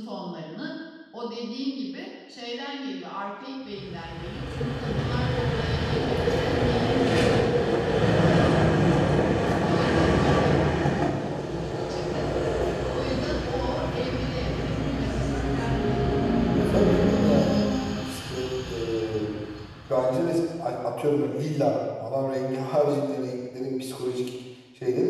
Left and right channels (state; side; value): identical; both; correlation 1.00